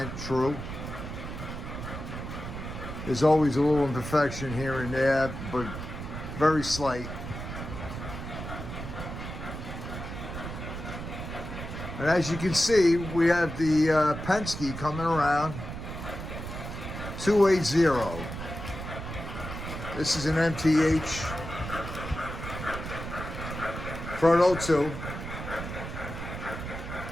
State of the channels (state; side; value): noise; right; rumble, 8 dB below the sound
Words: true. There's always a little imperfection here and there, but very slight. And as you can see, we have the Penske coming around, 280. This is an MTH Proto 2